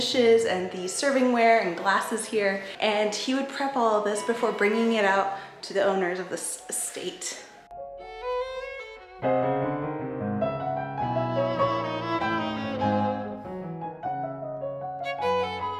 and the servingware and glasses here. And he would prep all of this before bringing it out to the owners of this estate.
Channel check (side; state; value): both; identical; correlation 1.00